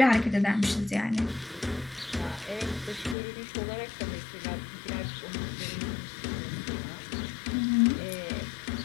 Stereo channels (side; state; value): right; drops out; at 3.2 s